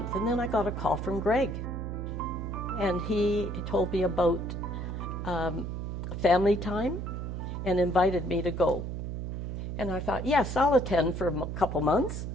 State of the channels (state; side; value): noise; right; hum, 4 dB below the sound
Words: and then I got a call from Greg. And he told me about family time and invited me to go. And I thought, yes, I'll attend for a couple months,